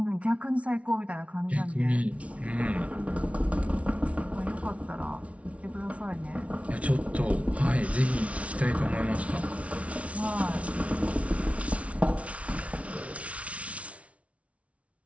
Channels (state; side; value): late; left; 0.064 ms